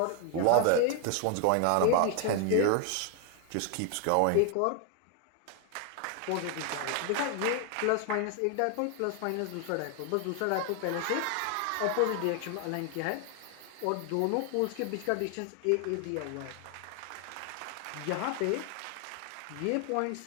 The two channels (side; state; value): both; different; correlation 0.00